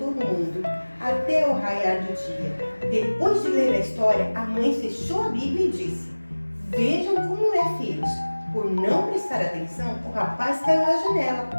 mundo, até o raiar do dia. Depois de ler a história, a mãe fechou a Bíblia e disse: vejam como é, filhos. Por não prestar atenção, o rapaz caiu da janela.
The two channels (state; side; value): inverted; both; correlation -1.00